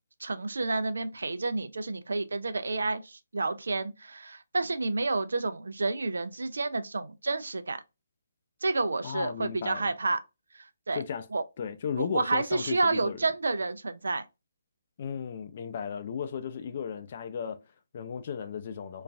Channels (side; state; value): both; inverted; correlation -0.89